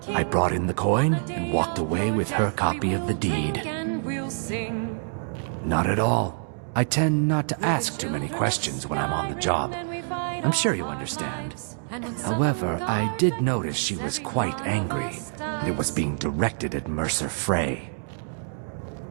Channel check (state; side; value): silent; left; digital silence